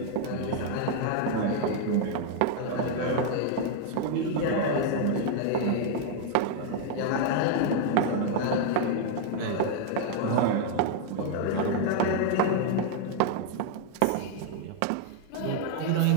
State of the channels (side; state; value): both; different; correlation 0.00